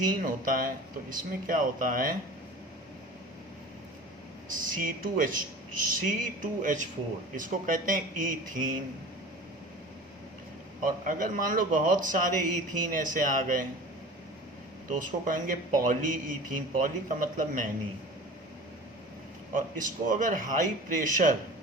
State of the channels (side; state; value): both; normal; correlation 0.38